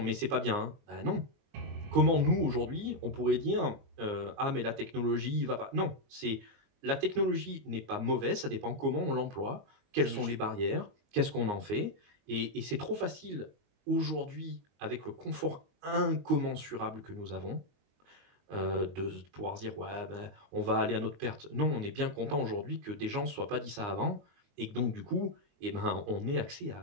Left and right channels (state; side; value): late; left; 22 ms